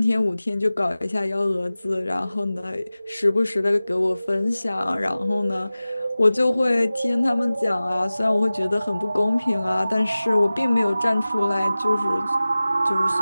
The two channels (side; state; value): both; inverted; correlation -0.97